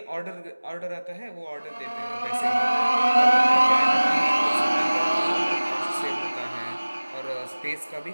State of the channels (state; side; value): inverted; both; correlation -1.00